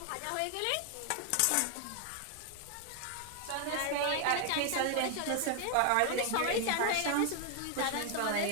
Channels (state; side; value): different; both; correlation 0.00